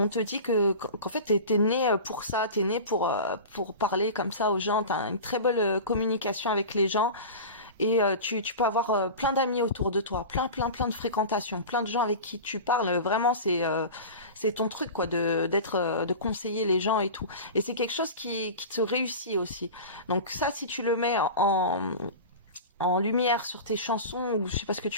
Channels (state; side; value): inverted; both; correlation -0.31